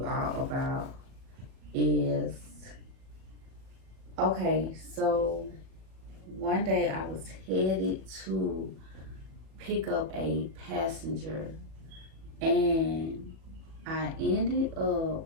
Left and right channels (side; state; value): left; late; 37 ms